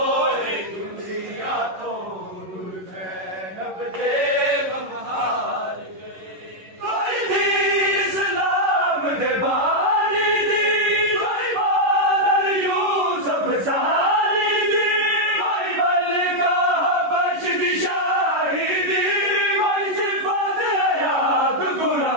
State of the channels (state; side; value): late; left; 11 ms